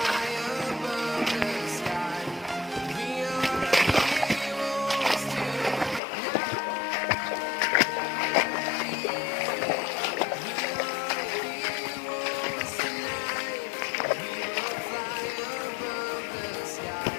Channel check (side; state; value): right; drops out; at 6.0 s